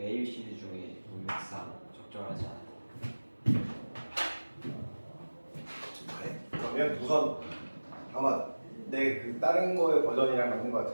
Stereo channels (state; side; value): inverted; both; correlation -1.00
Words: A, B, C, D 중에 문맥상 적절하지 않고. 그래. 그러면 우선 아마 내 그 다른 거의 버전이랑 맞는 것